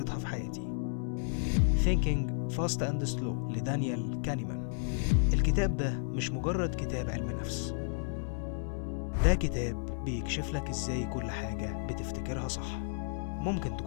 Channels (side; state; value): right; silent; 56 dB below the other